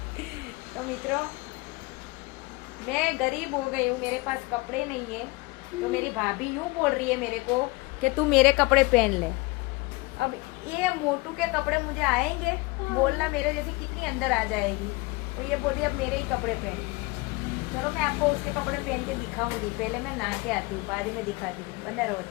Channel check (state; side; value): quieter; right; 25.0 dB